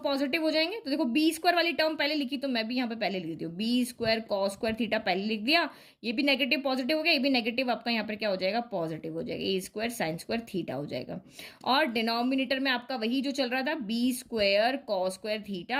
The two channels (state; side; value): identical; both; correlation 1.00